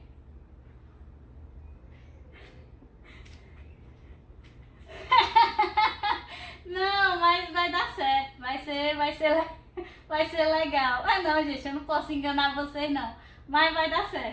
Não, mas vai dar certo, vai ser legal. Não, gente, eu não posso enganar vocês não, mas vai dar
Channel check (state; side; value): identical; both; correlation 1.00